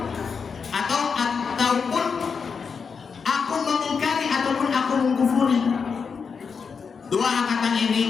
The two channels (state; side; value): quieter; right; 5.8 dB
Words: ataupun aku mengingkari ataupun aku mengkufuri. Dua kata